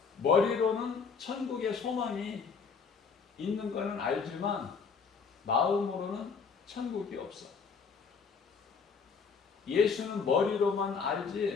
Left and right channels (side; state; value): right; quieter; 5.5 dB